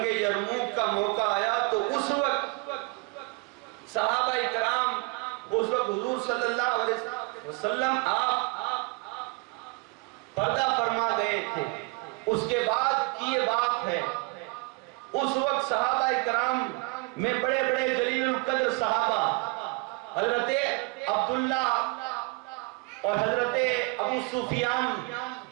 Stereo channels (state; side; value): quieter; left; 28.5 dB